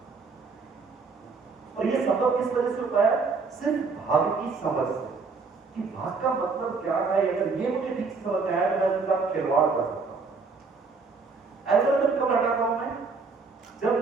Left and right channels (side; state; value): left; quieter; 4.5 dB